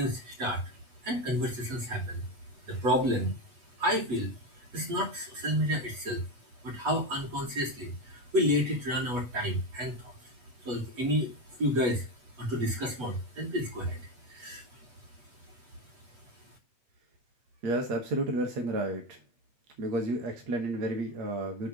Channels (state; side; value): late; left; 8.2 ms